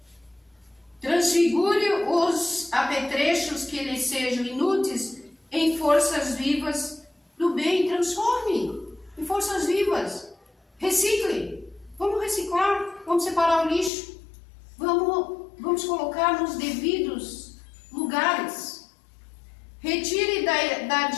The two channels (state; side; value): drops out; right; at 13.9 s